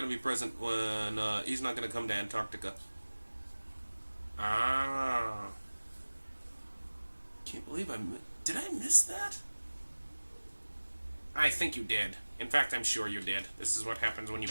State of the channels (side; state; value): both; inverted; correlation -1.00